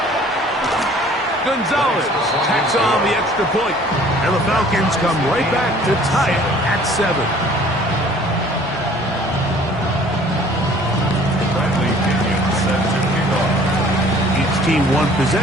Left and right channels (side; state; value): both; normal; correlation 0.53